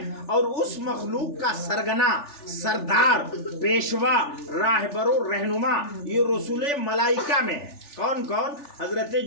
اور اس مخلوق کا سرگنا، سردار، پیشوا، راہبر و رہنما یہ رسول ملائکہ میں ہے۔ کون کون؟ حضرت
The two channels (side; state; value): right; late; 3.4 ms